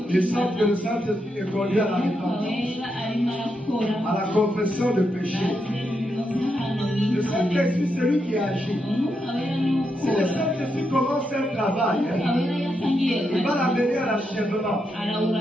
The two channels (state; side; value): normal; both; correlation 0.83